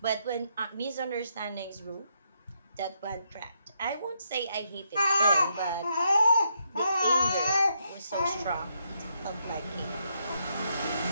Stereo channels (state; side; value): inverted; both; correlation -0.78